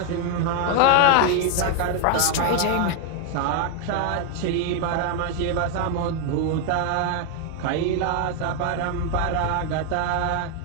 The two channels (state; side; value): different; both; correlation 0.00